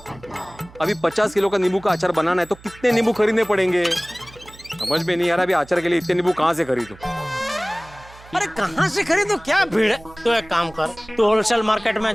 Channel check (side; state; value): right; noise; hum, 22 dB below the sound